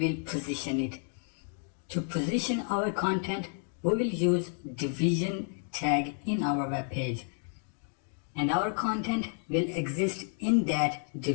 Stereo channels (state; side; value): silent; right; 57 dB below the other